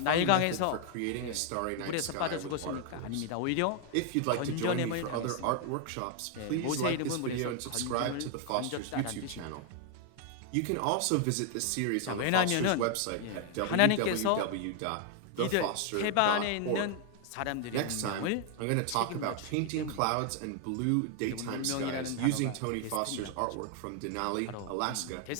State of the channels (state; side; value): different; both; correlation 0.01